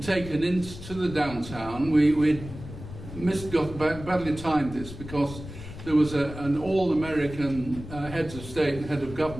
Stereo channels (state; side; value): noise; left; rumble, 12 dB below the sound